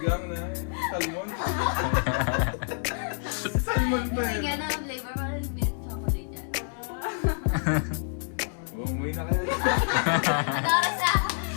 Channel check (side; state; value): right; silent; digital silence